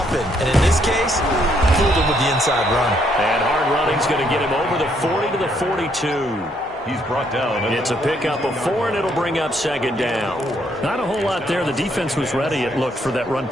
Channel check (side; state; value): both; normal; correlation 0.71